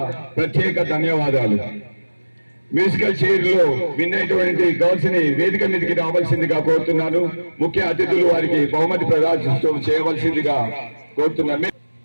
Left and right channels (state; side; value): inverted; both; correlation -1.00